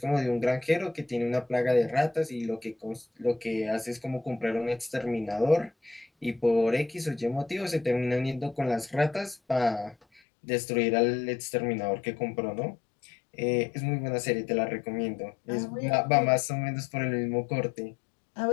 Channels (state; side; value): drops out; right; at 10.2 s